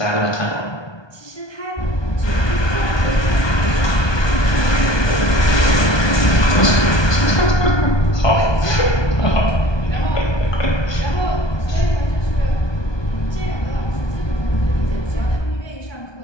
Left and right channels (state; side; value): late; right; 1.2 ms